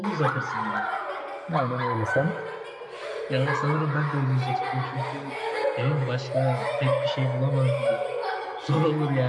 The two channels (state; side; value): identical; both; correlation 1.00